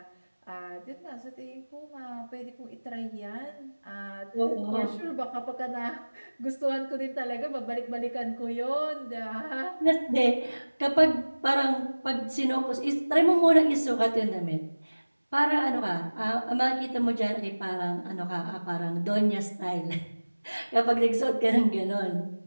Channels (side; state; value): both; inverted; correlation -1.00